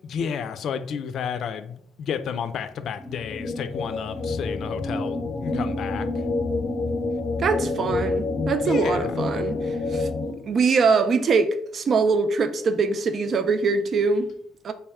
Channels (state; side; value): normal; both; correlation 0.73